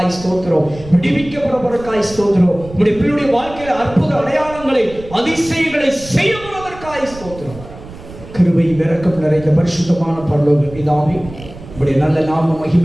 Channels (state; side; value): noise; right; rumble, 16 dB below the sound